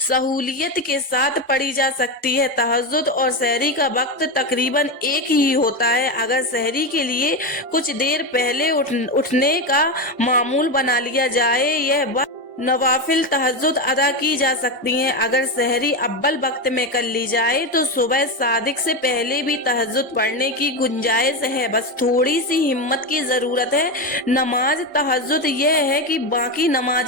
के साथ पढ़ी जा सकती है। तहज्जुद और सहरी का वक्त तकरीबन एक ही होता है। अगर सहरी के लिए कुछ देर पहले उठने का मामूल बना लिया जाए, यह वक्त नवाफिल तहज्जुद अदा की जा सकती हैं। अगर सहरी अव्वल वक्त में कर ली जाए तो सुबह सादिक से पहले भी तहज्जुद पढ़ने की गुंजाइश है, बस थोड़ी सी हिम्मत की जरूरत है। नमाज तहज्जुद यह है कि बाकी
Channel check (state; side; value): normal; both; correlation 0.14